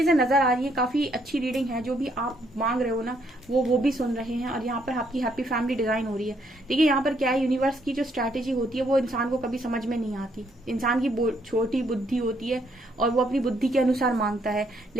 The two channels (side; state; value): both; normal; correlation 0.71